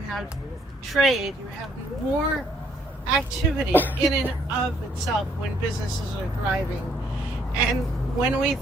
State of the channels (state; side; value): normal; both; correlation 0.67